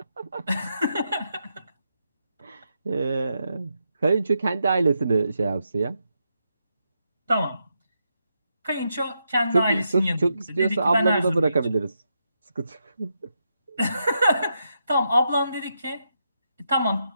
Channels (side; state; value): both; inverted; correlation -0.83